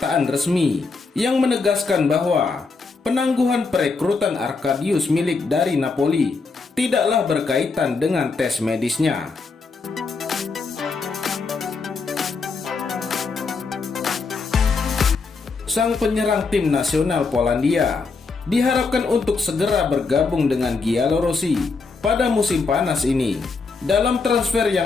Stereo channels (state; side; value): quieter; right; 4.4 dB